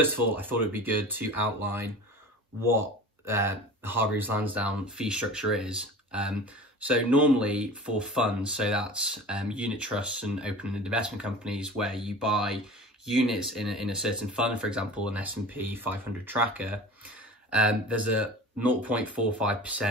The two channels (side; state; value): both; normal; correlation 0.38